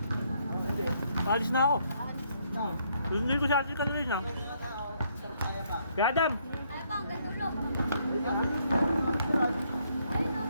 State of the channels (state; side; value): inverted; both; correlation -0.71